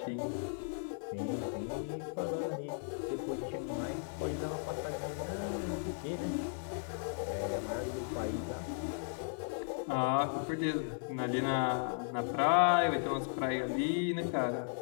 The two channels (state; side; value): silent; right; 54 dB below the other